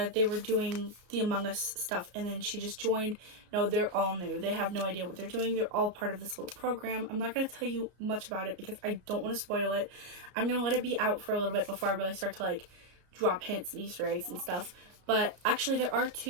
were doing the Among Us stuff and then she just joined. No, they're all new. They have no idea what they're doing. They're all part of this little program. I'm not going to tell you much about it because I don't want to spoil it. I'm going to let it be out for a little bit before I really start to like drop hints and Easter eggs and stuff. But actually there are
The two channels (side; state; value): left; late; 33 ms